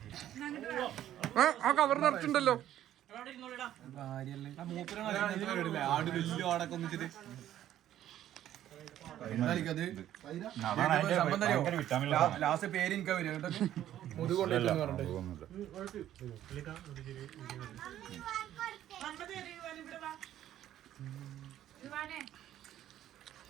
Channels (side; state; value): left; quieter; 12.1 dB